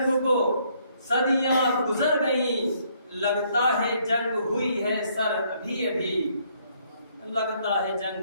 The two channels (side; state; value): both; inverted; correlation -0.68